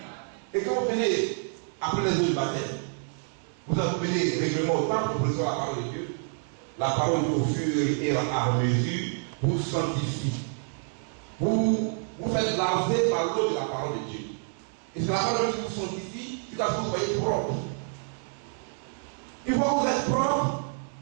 Et quand vous venez après les eaux du baptême, vous venez régulièrement au temple pour recevoir la parole de Dieu. La parole au fur et à mesure vous sanctifie. Vous faites laver par l'eau de la parole de Dieu. Et c'est la parole qui vous sanctifie jusqu'à ce que vous soyez propre. Une fois que vous êtes propre,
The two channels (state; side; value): silent; left; 59 dB below the other